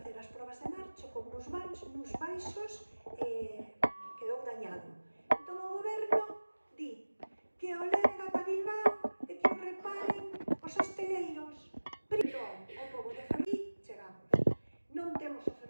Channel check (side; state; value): both; inverted; correlation -1.00